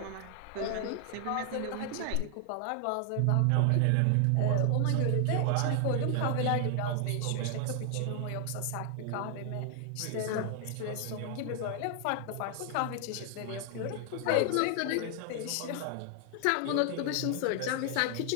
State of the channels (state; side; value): different; both; correlation 0.00